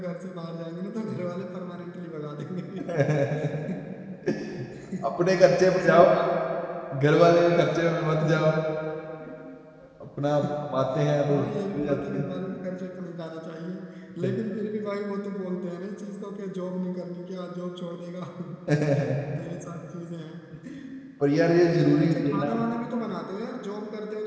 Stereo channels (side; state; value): both; identical; correlation 1.00